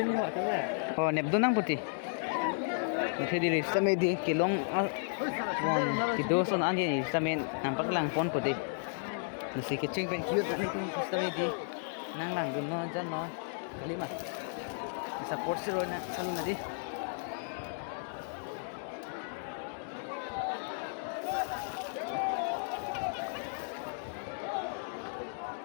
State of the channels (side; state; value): right; silent; digital silence